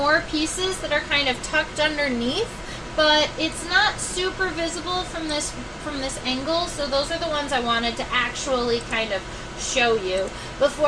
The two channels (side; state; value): both; identical; correlation 1.00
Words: pieces that are kind of tucked underneath, but it's not super visible from this angle, so those are the ones I wanted to actually kind of show you